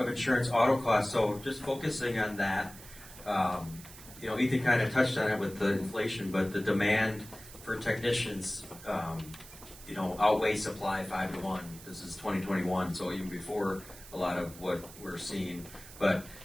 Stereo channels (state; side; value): noise; right; hiss, 17 dB below the sound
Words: insurance auto costs, so just focusing on that, you know, Ethan kind of touched on it with the inflation, but the demand for technicians, you know, outweigh supply 5 to 1. This is 2021, so even before a lot of what we're seeing. But,